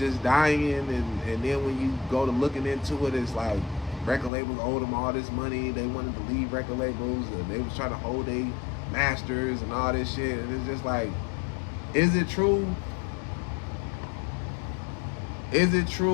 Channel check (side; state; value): right; drops out; at 4.3 s